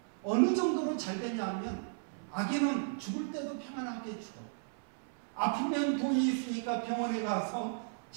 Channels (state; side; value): silent; left; 55 dB below the other